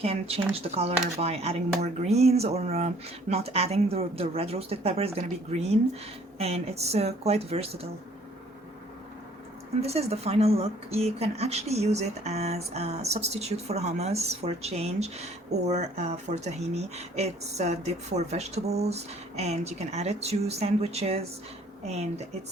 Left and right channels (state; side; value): normal; both; correlation 0.58